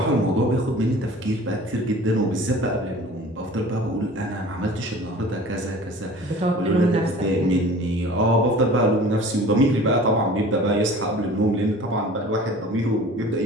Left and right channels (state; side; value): normal; both; correlation 0.44